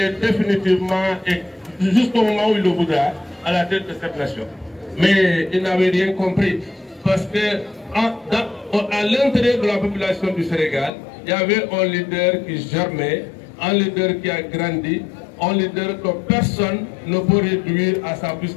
définitivement et jusqu'au moment où il le voudra à la tête de cette nation. Mais il n'avait rien compris parce que à l'intérieur de la population du Sénégal, il y avait un leader qui germait, un leader qui a grandi, un leader que personne ne peut réduire à sa plus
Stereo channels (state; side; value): drops out; right; at 10.9 s